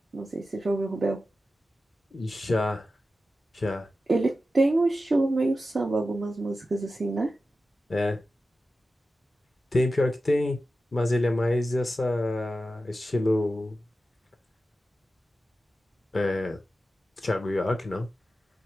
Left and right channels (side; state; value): both; normal; correlation 0.93